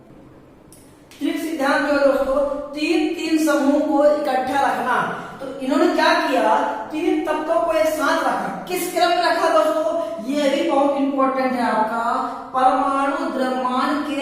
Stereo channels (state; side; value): identical; both; correlation 1.00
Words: त्रिक सिद्धांत जो है दोस्तों तीन तीन समूह को इकट्ठा रखना। तो इन्होंने क्या किया, तीन तत्वों को एक साथ रखा। किस क्रम में रखा दोस्तों, ये भी बहुत इंपॉर्टेंट है आपका, परमाणु द्रव्यमान